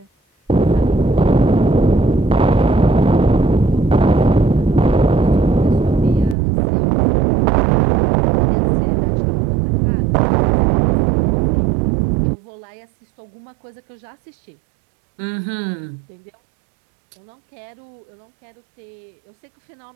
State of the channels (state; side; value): drops out; left; at 6.4 s